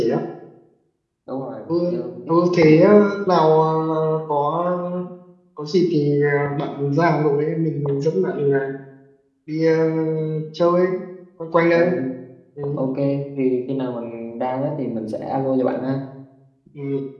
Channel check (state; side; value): identical; both; correlation 1.00